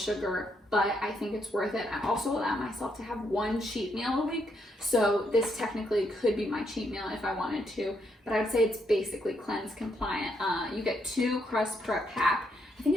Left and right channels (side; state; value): both; normal; correlation 0.76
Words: but I think it's worth it. I also allow myself to have 1 cheat meal a week, so this technically could be my cheat meal if I wanted to, but I would say it's basically cleanse compliant. You get 2 crusts per pack. I think